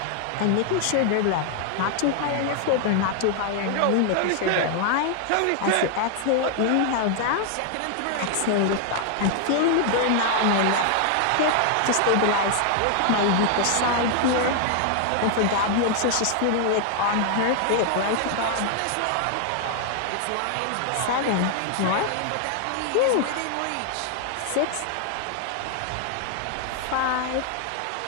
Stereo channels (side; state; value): both; different; correlation 0.00